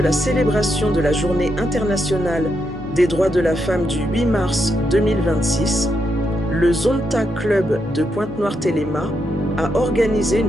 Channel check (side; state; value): both; normal; correlation 0.81